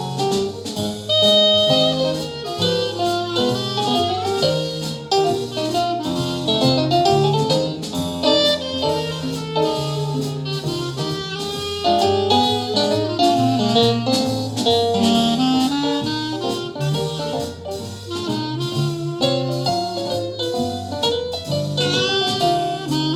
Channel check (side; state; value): both; identical; correlation 1.00